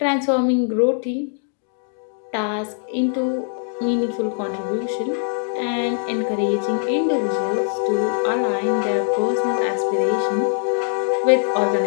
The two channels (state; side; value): silent; right; digital silence